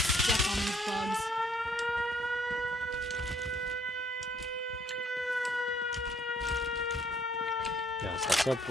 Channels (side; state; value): both; normal; correlation 0.64